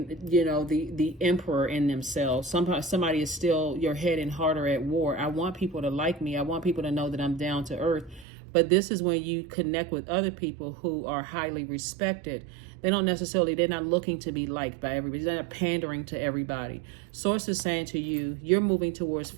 emperor in themselves. Somebody is still, your head and heart are at war. I want people to like me. I want people to know that I'm down to earth. But this is when you connect with other people who are highly respected. They're not looking to be liked by everybody. They're not pandering to everybody. Source is saying to you, you're moving towards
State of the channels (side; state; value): left; drops out; at 8.2 s